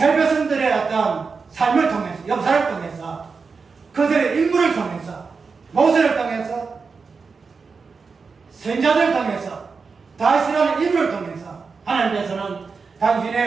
백성들의 어떤 삶을 통해서, 역사를 통해서, 그들의 인물을 통해서, 모세를 통해서, 선자들을 통해서, 다윗이라는 인물을 통해서 하나님께서는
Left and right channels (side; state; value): left; quieter; 4.9 dB